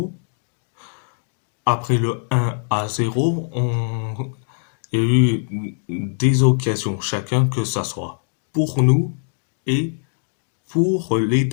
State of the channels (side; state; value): right; silent; digital silence